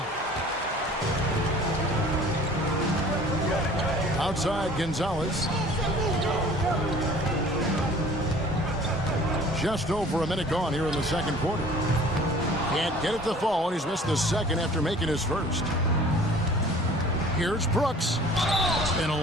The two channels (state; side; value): normal; both; correlation 0.49